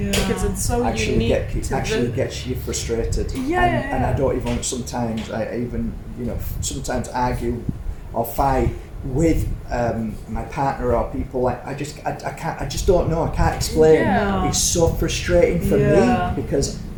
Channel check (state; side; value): identical; both; correlation 1.00